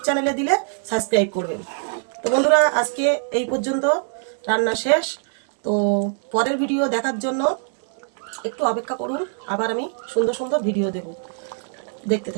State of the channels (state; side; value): silent; left; 64 dB below the other